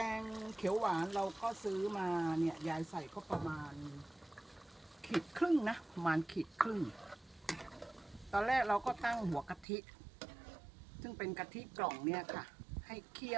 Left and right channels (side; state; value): left; drops out; at 9.7 s